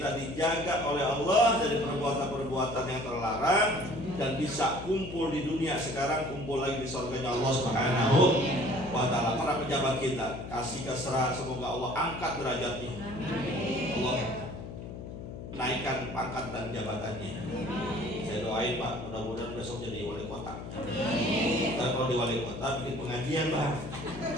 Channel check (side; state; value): left; noise; hum, 10 dB below the sound